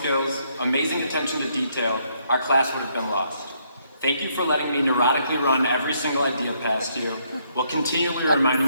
amazing attention to detail, our class would have been lost. Thank you for letting me neurotically run every single idea past you, while continually reminding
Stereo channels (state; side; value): inverted; both; correlation -0.72